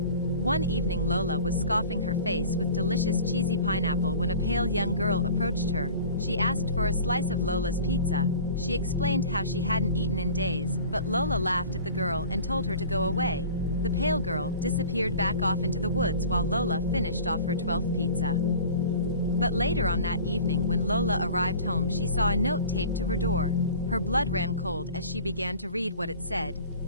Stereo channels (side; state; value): both; inverted; correlation -0.42